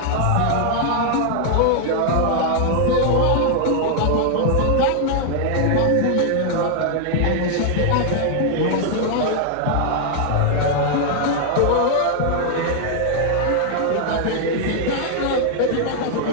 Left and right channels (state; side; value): different; both; correlation 0.00